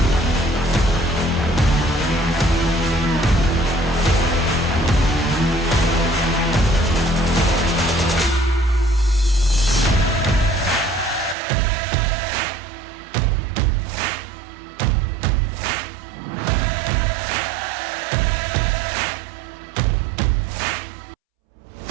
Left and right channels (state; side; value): drops out; left; at 11.4 s